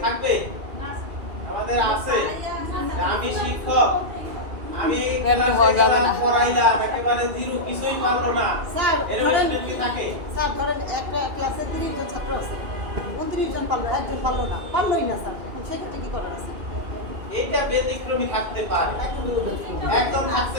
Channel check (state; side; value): late; left; 2.4 ms